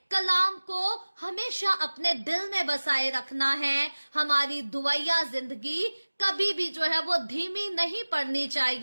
कलाम को हमेशा अपने दिल में बसाए रखना है। हमारी दुआया जिंदगी कभी भी जो है वो धीमी नहीं पड़नी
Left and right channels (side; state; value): both; inverted; correlation -1.00